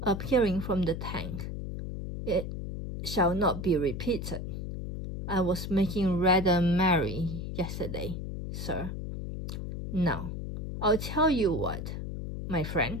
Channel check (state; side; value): noise; left; hum, 5 dB below the sound